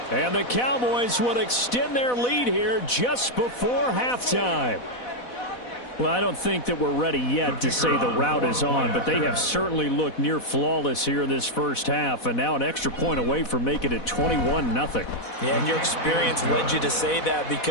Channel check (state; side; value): late; right; 4.1 ms